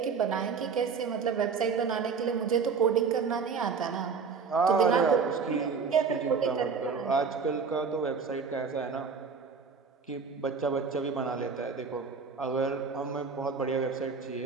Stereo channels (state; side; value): quieter; left; 5.5 dB